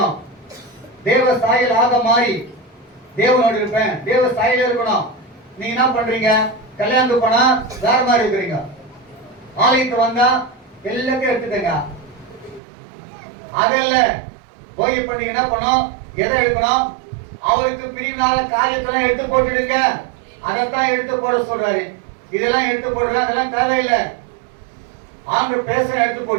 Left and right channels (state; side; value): drops out; left; at 12.6 s